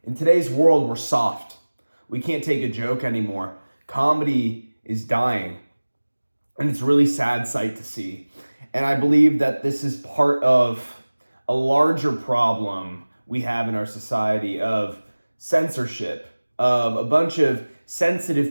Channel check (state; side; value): inverted; both; correlation -1.00